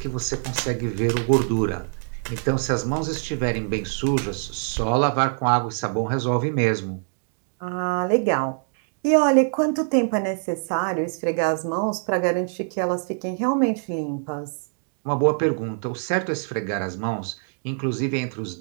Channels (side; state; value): left; silent; 62 dB below the other